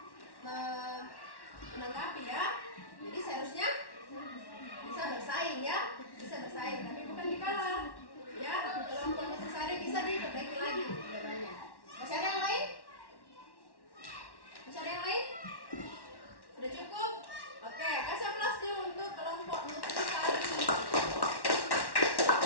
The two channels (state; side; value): late; right; 1.1 ms